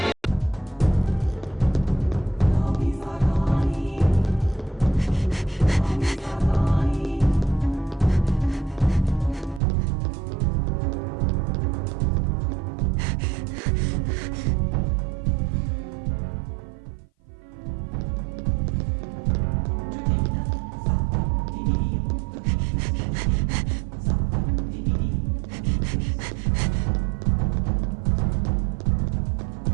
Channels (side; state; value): left; drops out; at 9.6 s